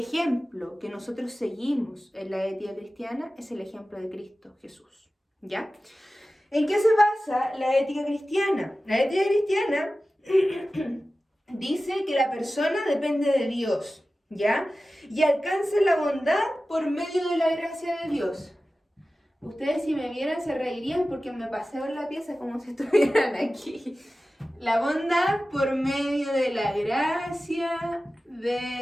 que nosotros seguimos en la ética cristiana es el ejemplo de Cristo Jesús, ¿ya? ¿En qué se basa la ética cristiana? La ética cristiana dice que la persona depende de Dios, ¿ya? Y alcanza la bondad por medio de la gracia de Dios. Ustedes, si me vieran, se reirían porque me paseo en la pieza como si estuvieran aquí. La bondad por medio de la gracia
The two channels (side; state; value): both; normal; correlation 0.95